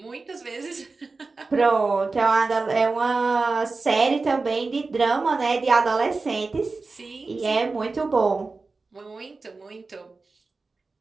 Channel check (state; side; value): quieter; left; 3.9 dB